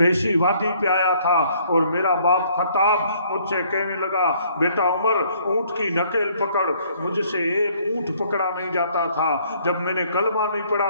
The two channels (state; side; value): inverted; both; correlation -0.63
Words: اسی وادی پہ آیا تھا، اور میرا باپ خطاب مجھ سے کہنے لگا بیٹا عمر اونٹ کی نکیل پکڑ، مجھ سے ایک اونٹ پکڑا نہیں جاتا تھا، جب میں نے کلمہ نہیں